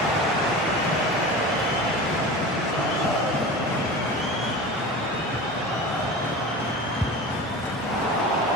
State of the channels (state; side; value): normal; both; correlation 0.33